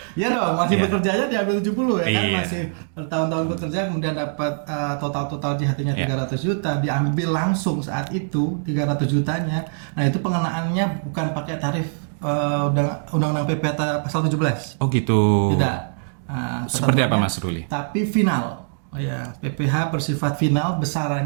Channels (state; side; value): silent; left; digital silence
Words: ya dong, masih bekerjanya diambil 70 ya kan, masih bertahun-tahun bekerja kemudian dapat total JHT-nya 300 juta diambil langsung saat itu 300 jutanya. Nah, itu pengenaannya bukan pakai tarif undang-undang PPh pasal 17. Oh gitu. Tidak. Seperti apa Mas Ruli? Tapi final. Oh ya, PPh bersifat final,